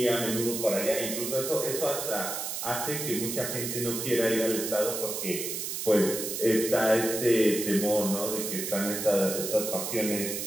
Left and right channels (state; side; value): noise; right; hiss, 4 dB below the sound